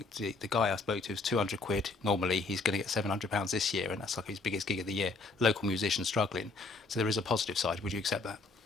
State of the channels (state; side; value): quieter; right; 3.7 dB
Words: the guy I spoke to was 200 quid normally. He's going to get £700 this year, and that's like his biggest gig of the year. Local musicians struggling. So there is a positive side. Would you accept that?